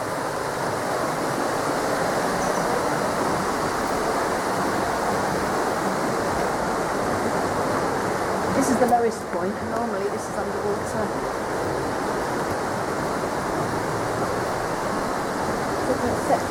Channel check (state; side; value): identical; both; correlation 1.00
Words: This is the lowest point, and normally this is underwater. It's an